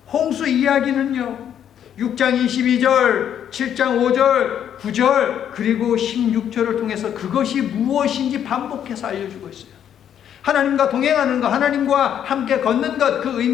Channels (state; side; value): quieter; right; 9.5 dB